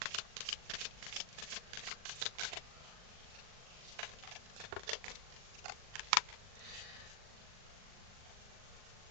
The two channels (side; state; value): left; late; 39 ms